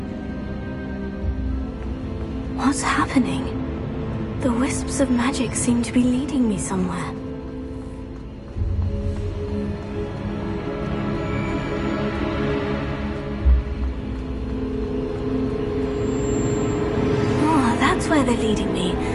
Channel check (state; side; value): identical; both; correlation 1.00